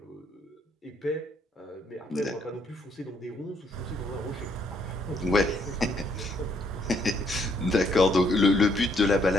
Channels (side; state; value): both; normal; correlation 0.70